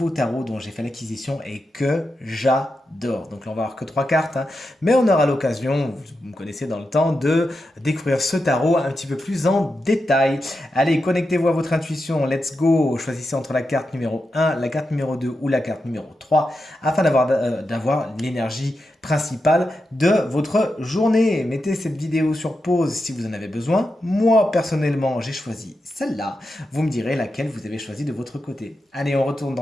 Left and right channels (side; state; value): both; normal; correlation 0.88